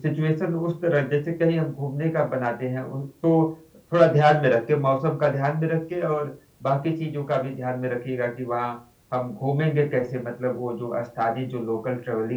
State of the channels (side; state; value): both; identical; correlation 1.00